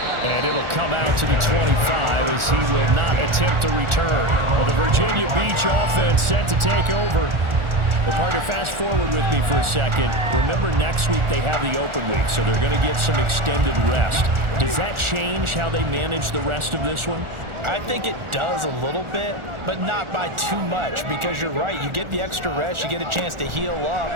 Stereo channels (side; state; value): left; late; 1.4 ms